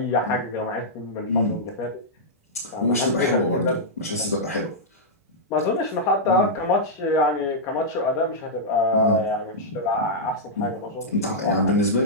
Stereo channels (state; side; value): normal; both; correlation -0.08